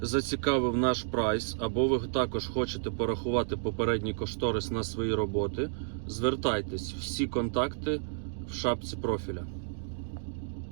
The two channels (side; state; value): left; silent; digital silence